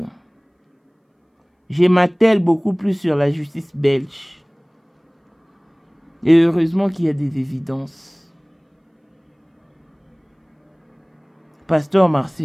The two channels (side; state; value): both; identical; correlation 1.00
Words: m'attelle beaucoup plus sur la justice belge. Et heureusement qu'il y a des évidences. Pasteur